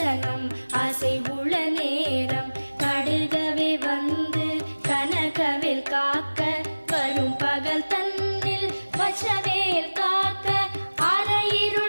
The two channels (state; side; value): inverted; both; correlation -1.00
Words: அசைவுள நேரம் கடுகவே வந்து கனகவேல் காக்க வரும் பகல் தன்னில் வசவேல் காக்க